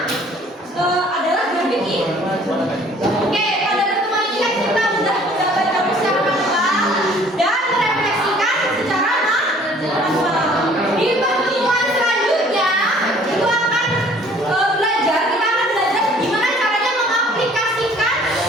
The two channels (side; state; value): both; normal; correlation 0.55